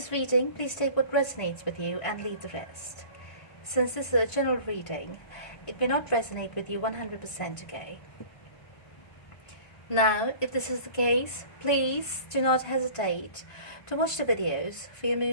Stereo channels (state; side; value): late; right; 1.5 ms